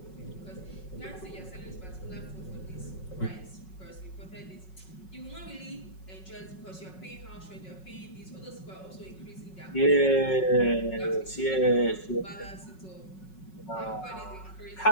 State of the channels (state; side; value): late; right; 5.4 ms